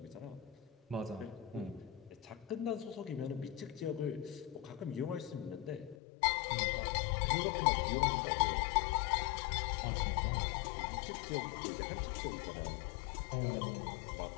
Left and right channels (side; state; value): right; drops out; at 6.0 s